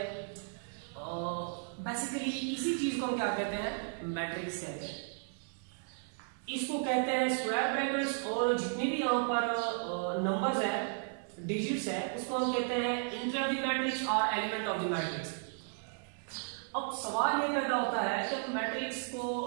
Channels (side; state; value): left; silent; 55 dB below the other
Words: बेसिकली इसी चीज को हम क्या कहते हैं मैट्रिक्स कहते हैं। इसको कहते हैं स्क्वायर ब्रैकेट्स और जितने भी यहाँ पर नंबर्स है डिजिट्स है उसको हम कहते हैं इंटर ऑफ द मैट्रिक्स और एलिमेंट ऑफ द मैट्रिक्स। अब सवाल ये पैदा होता है कि मैट्रिक्स को